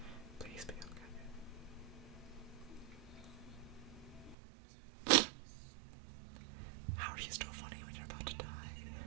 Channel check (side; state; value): left; drops out; at 4.4 s